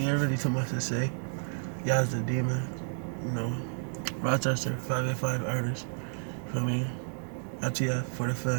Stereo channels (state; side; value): silent; left; digital silence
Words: ain't really too much to say. Yazz Da Demon, Rochester, 585 artist. For me, ITF for the